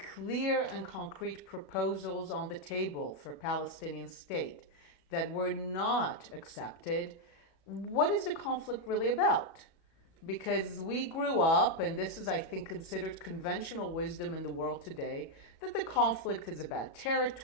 clear and concrete proposals on the table for a Palestinian state that were not accepted, what is the conflict really about? Because we grew up, and this is, I think, considered conventional wisdom in the world today, that the conflict is about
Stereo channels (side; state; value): right; late; 34 ms